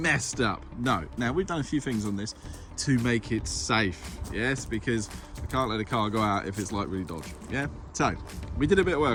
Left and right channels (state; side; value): identical; both; correlation 1.00